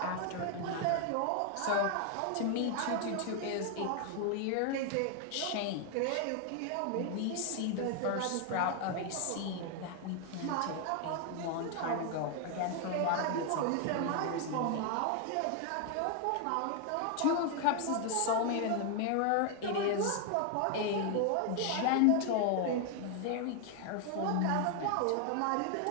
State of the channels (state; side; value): different; both; correlation 0.00